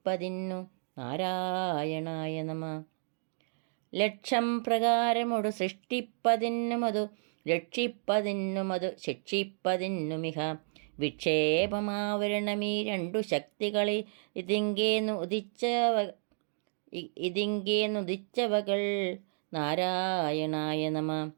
നാരായണായ നമ. ലക്ഷം പ്രകാരമൊടു സൃഷ്ടിപ്പതിന്നുമതു രക്ഷിപ്പതിന്നുമതു ശിക്ഷിപ്പതിന്നുമിഹ വിക്ഷേപമാവരണമീ രണ്ടു ശക്തികളെ ഇതിങ്കേന്നുദിച്ചവകൾ നാരായണായ നമ.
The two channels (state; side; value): silent; left; digital silence